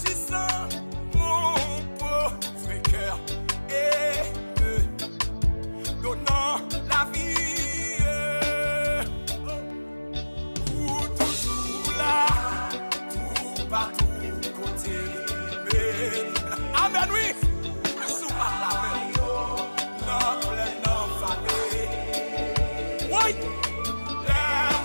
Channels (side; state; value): both; inverted; correlation -1.00